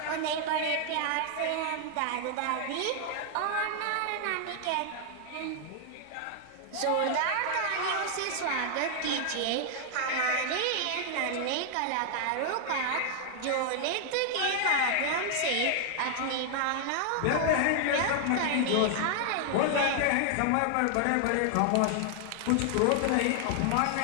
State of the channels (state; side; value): different; both; correlation 0.00